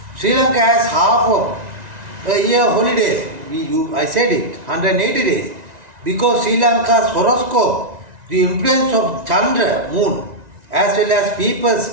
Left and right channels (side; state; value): left; late; 1.9 ms